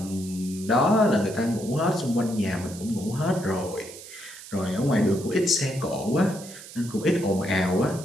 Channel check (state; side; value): noise; right; hiss, 15 dB below the sound